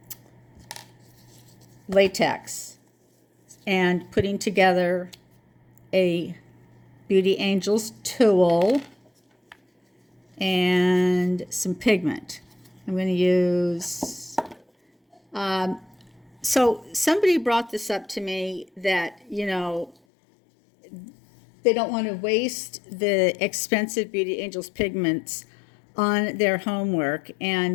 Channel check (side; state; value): right; drops out; at 20.0 s